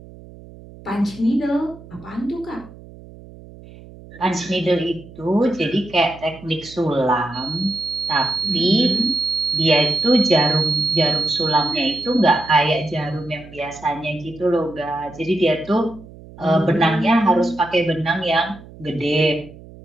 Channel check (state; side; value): noise; right; hum, 19 dB below the sound